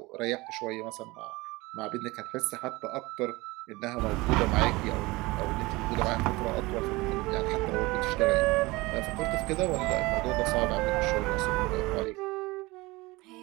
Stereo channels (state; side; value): quieter; left; 22.0 dB